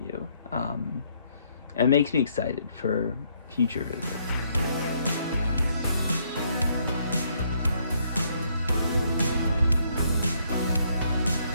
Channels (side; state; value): both; inverted; correlation -0.70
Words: And it makes me excited for future visits.